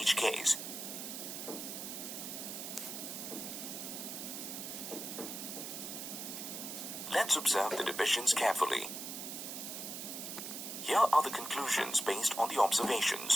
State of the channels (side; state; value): right; noise; hiss, 6 dB below the sound